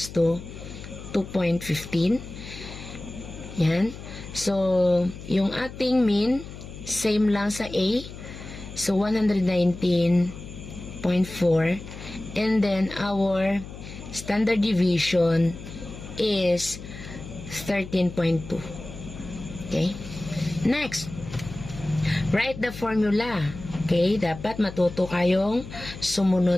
to 2.15. Yan. So, yung ating mean, same lang sa A. So, 119.4. And then, our standard deviation is 13.2. Okay? Next, write the formula. Okay? Dapat matuto kayong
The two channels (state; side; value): noise; left; hum, 13 dB below the sound